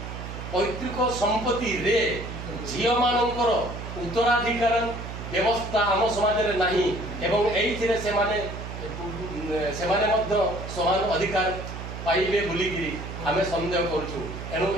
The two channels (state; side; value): noise; right; hum, 9 dB below the sound